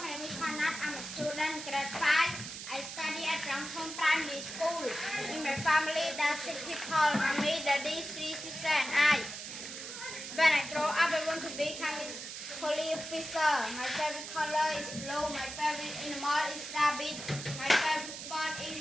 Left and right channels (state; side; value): noise; right; hiss, 9 dB below the sound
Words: name is Hanat. I'm a student, grade 5. I study at Rangthom Primary School. In my family, there are 6 people, mommy, daddy, 3 sisters and I. When I grow up, I want to become a police officer. My favorite color is blue. My favorite animal is rabbit. My favorite sport